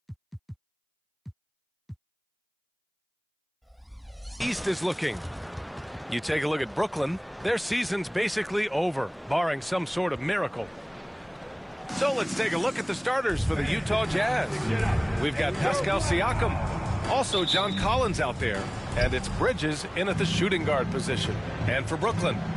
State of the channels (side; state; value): both; identical; correlation 1.00